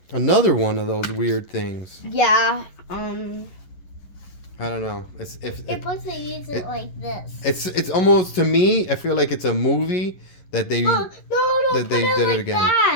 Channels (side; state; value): right; late; 11 ms